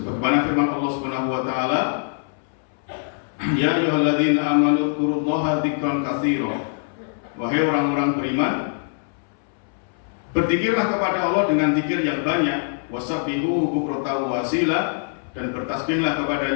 firman Allah Subhanahu wa Ta'ala, ya ayyuhalladzina amanu dzkurullaha dzikran katsira. Wahai orang-orang beriman, berzikirlah kepada Allah dengan zikir yang banyak, wasabbihuhu bukratan wa asila, dan bertasbihlah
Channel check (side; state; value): right; silent; 63 dB below the other